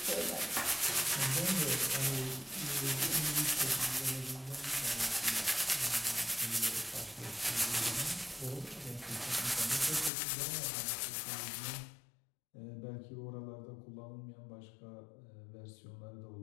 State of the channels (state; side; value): drops out; right; at 10.1 s